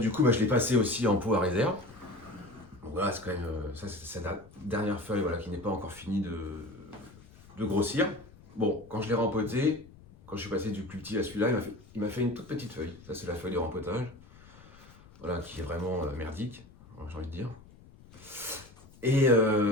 coup, je l'ai passé aussi en pot à réserve. Donc voilà, c'est quand même. Ça, c'est la dernière feuille voilà, qui n'est pas encore finie de grossir. Bon, quand je l'ai rempoté, quand je suis passé du plus petit à celui-là, il m'a fait une toute petite feuille. Ça, c'est la feuille de rempotage. Voilà, qui est vraiment merdique, j'ai envie de dire. Et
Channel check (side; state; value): left; noise; rumble, 23 dB below the sound